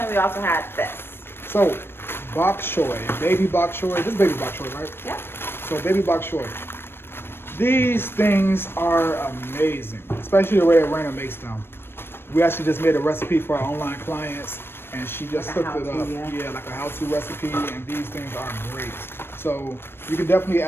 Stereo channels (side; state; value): right; late; 0.11 ms